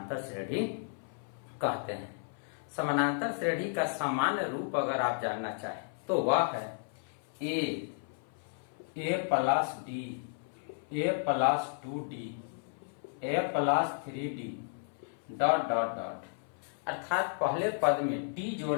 श्रेणी कहते हैं। समानांतर श्रेणी का सामान्य रूप अगर आप जानना चाहें तो वह है a plus d, a plus 2d, a plus 3d dot dot dot. अर्थात पहले पद में d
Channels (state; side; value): silent; right; 56 dB below the other